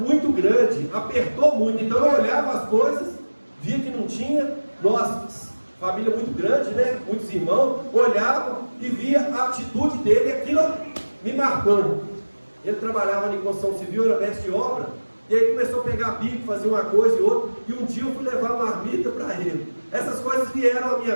grande, apertou muito. Então eu olhava as coisas, via que não tinha, nós, família muito grande, né? Muitos irmãos, olhavam e via a atitude dele, e aquilo me marcou. Ele trabalhava em construção civil, era mestre de obra, e aí começou a pegar bico, fazer uma coisa e outra, e um dia eu fui levar uma marmita para ele. Essas coisas vieram à minha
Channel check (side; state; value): both; inverted; correlation -1.00